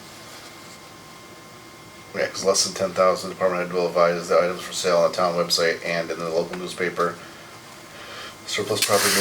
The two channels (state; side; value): identical; both; correlation 1.00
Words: Yeah, cause less than 10,000, department head will advise the items for sale on the town website and in the local newspaper. Surplus property